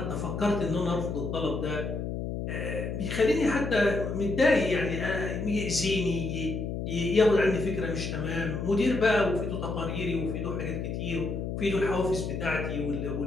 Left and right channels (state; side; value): noise; left; hum, 4 dB below the sound